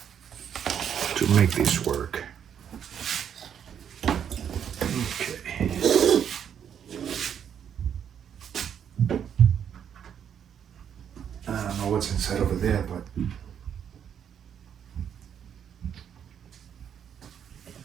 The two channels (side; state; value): left; quieter; 8.5 dB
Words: to make this work. Okay. I don't know what's inside over there, but